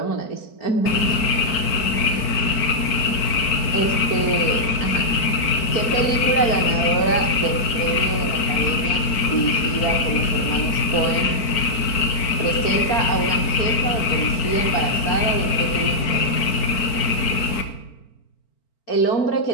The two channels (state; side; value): late; right; 4.5 ms